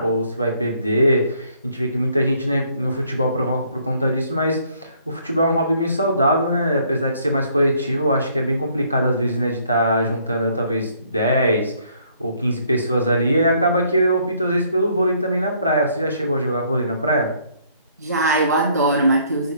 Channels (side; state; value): both; inverted; correlation -0.65